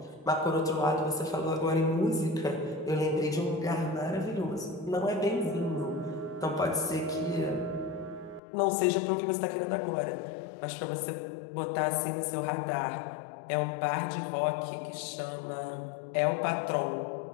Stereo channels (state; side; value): drops out; right; at 8.4 s